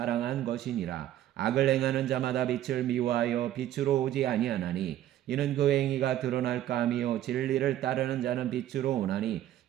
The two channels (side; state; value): left; quieter; 12.5 dB